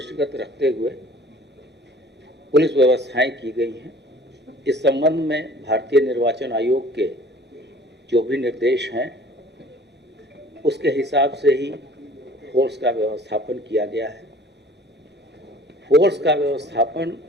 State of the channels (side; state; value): both; normal; correlation 0.50